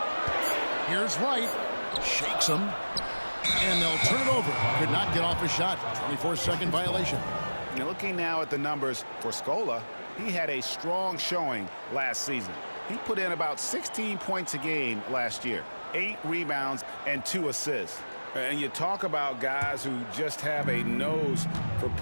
Here's Wright. Shakes him. And they'll turn it over. Could not get off a shot. 24-second violation. Now looking now at the numbers for Scola, he had a strong showing last season. He put in about 16 points a game last year. 8 rebounds and 2 assists. And you talk about guys who just have a nose for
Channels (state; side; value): inverted; both; correlation -1.00